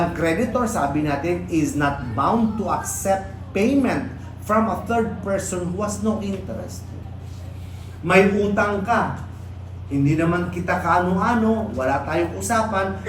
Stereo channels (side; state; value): both; identical; correlation 1.00